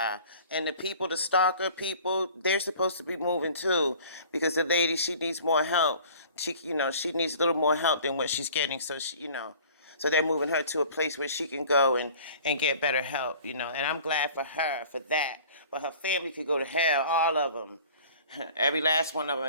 And the people, the stalker people, they're supposed to be moving too. Because the lady, she needs more help. She needs a little more help than what she's getting. So so they're moving her to a place where she can go and get better help, And I'm glad for her for that. But her family could go to hell, all of them. Every last one of them.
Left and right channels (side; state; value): both; inverted; correlation -0.47